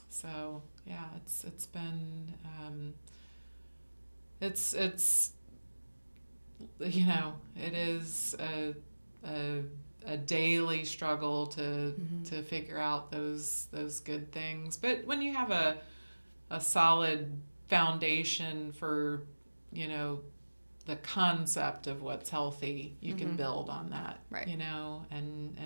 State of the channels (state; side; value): inverted; both; correlation -1.00